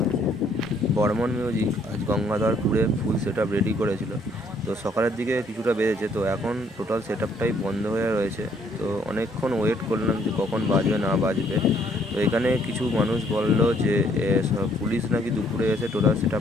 বর্মন মিউজিক আজ গঙ্গাধরপুরে ফুল সেট আপ রেডি করেছিল। তো সকালের দিকে কিছুটা বেজেছে, তো এখন টোটাল সেট আপটাই বন্ধ হয়ে রয়েছে। তো অনেকক্ষণ ওয়েট করলাম যে কখন বাজবে না বাজবে। তো এখানে কিছু মানুষ বললো যে পুলিশ নাকি দুপুরে এসে টোটাল সেট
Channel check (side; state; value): both; normal; correlation 0.66